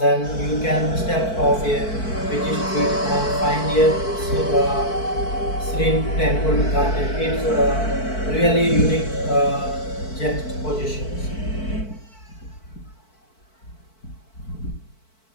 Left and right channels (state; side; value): late; right; 4.5 ms